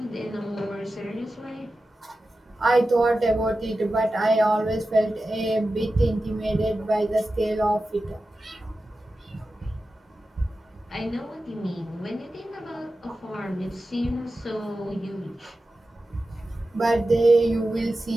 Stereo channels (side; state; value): both; normal; correlation 0.93